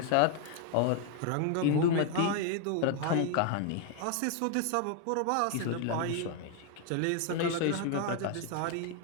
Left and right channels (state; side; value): different; both; correlation 0.00